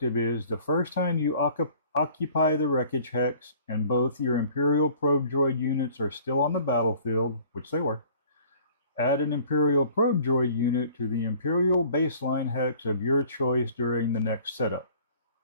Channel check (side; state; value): both; inverted; correlation -0.52